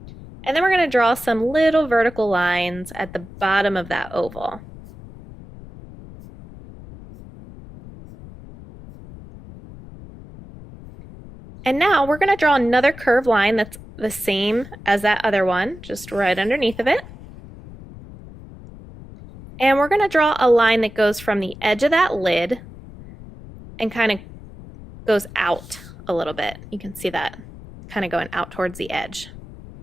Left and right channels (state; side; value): noise; left; rumble, 17 dB below the sound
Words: And then we're going to draw some little vertical lines at the bottom of that oval. And now we're going to draw another curved line that's the same as that other one, just right underneath of it. And we're going to draw a line that goes from the edge of that lid and kind of goes out a little bit. You can see that kind of going out towards the edge.